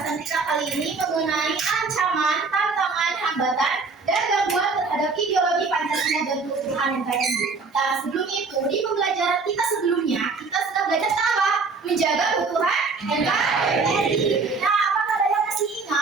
kita kali ini mengenai ancaman, tantangan, hambatan, dan gangguan terhadap ideologi Pancasila dan keutuhan NKRI. Nah, sebelum itu, di pembelajaran kita sebelumnya, kita sudah belajar apa? Menjaga keutuhan NKRI. Nah, apakah ada yang masih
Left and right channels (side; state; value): left; quieter; 4.3 dB